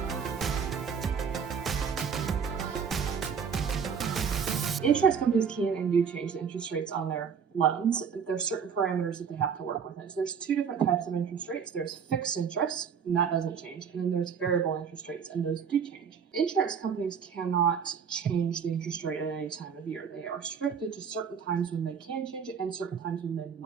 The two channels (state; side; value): quieter; left; 6.8 dB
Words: Insurance companies can and do change the interest rates on their loans. There's certain parameters that they have to work within. So there's two different types of interest rates. There's fixed interest, and that doesn't change. And then there's variable interest rates, and those do change. Insurance companies cannot change the interest rate at any time of year. They are restricted to certain times when they can change it and certain times when they